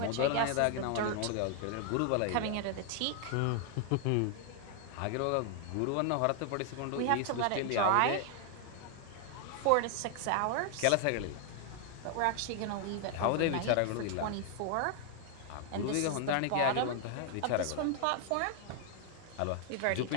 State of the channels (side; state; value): both; different; correlation 0.00